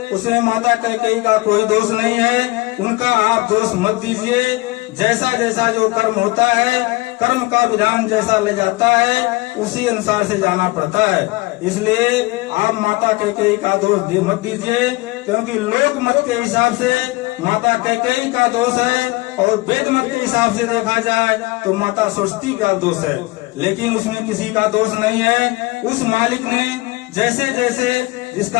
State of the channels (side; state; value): right; quieter; 22.3 dB